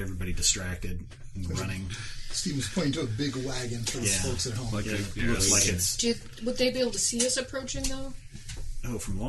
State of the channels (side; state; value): both; identical; correlation 1.00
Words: everybody distracted and running. Steven's pointing to a big wagon for the Yeah. folks at home. Like Yeah, a, it yeah, looks like we it's Would they be able to see us approaching, though? from